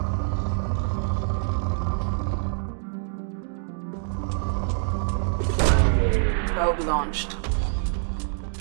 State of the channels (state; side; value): silent; left; 61 dB below the other